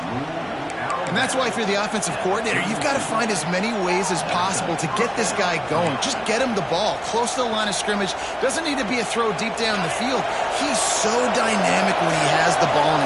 And that's why if you're the offensive coordinator, you've got to find as many ways as possible to get this guy going. Just get him the ball close to the line of scrimmage. Doesn't need to be a throw deep down the field. He's so dynamic when he has the ball in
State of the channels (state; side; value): identical; both; correlation 1.00